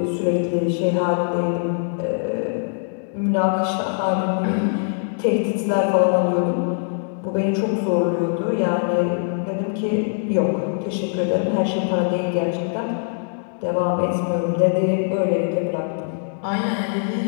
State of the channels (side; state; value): right; silent; digital silence